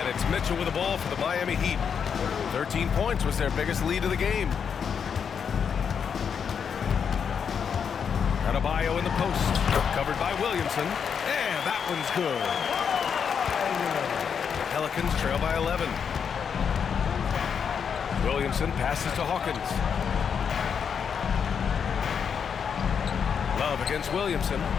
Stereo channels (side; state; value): right; quieter; 7.0 dB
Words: it's Mitchell with the ball for the Miami Heat. 13 points was their biggest lead of the game. Adebayo in the post. Covered by Williamson. And that one's good. The Pelicans trail by 11. Williamson passes to Hawkins. Love against Williamson.